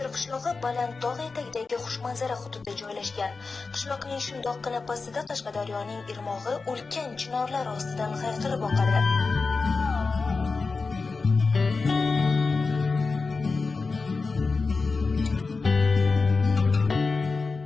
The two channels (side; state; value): right; quieter; 4.2 dB